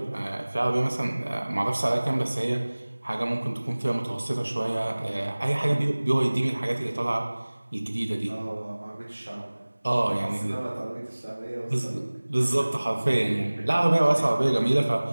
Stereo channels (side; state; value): both; inverted; correlation -1.00